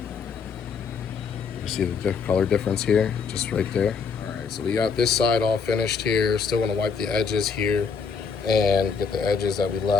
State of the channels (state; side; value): quieter; right; 5.7 dB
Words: You see the color difference here, just right there. All right, so we got this side all finished here. Still gonna wipe the edges here and get the edges that we